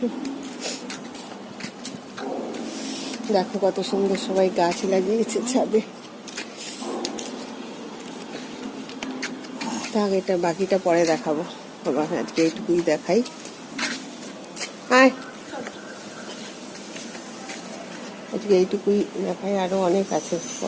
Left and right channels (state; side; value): identical; both; correlation 1.00